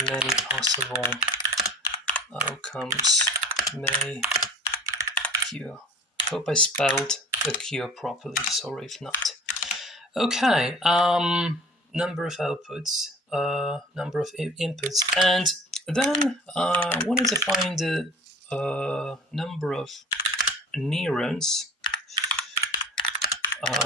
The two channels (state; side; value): normal; both; correlation 0.43